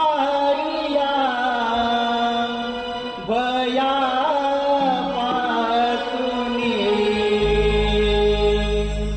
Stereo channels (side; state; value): both; identical; correlation 1.00